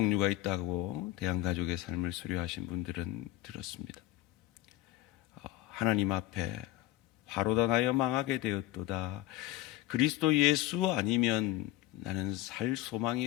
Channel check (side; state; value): right; quieter; 15.5 dB